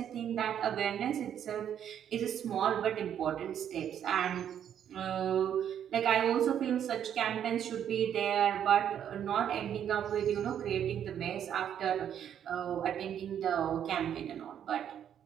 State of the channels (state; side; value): quieter; left; 9.4 dB